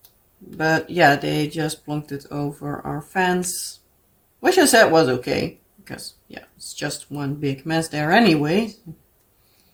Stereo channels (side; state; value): both; identical; correlation 1.00